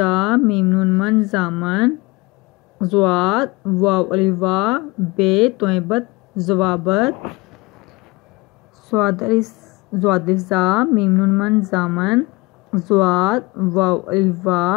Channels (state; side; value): quieter; right; 23.4 dB